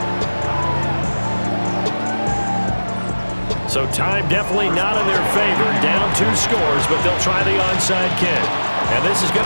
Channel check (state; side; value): inverted; both; correlation -1.00